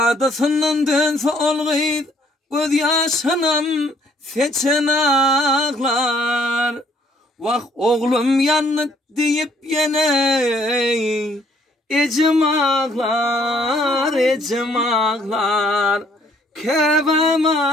dönse olgıydı, göz yaşanam seçen ağlar. Vak oğlum yanıt deyip yine, ecem ağlar, ecem ağlar. Kevem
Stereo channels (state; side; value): normal; both; correlation 0.65